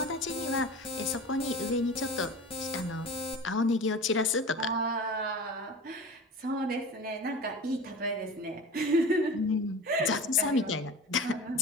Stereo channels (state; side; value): normal; both; correlation 0.35